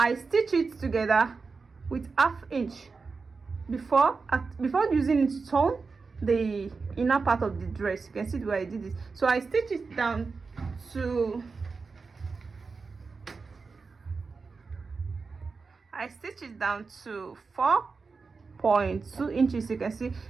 stitch it together with ½ inch before using it to turn the inner part of the dress. You can see the way I did this. So I stitch it down to 4.2 inches. You can see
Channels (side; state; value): left; quieter; 4.6 dB